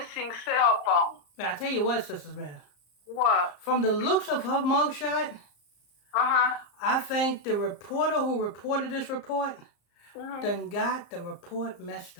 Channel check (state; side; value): late; right; 34 ms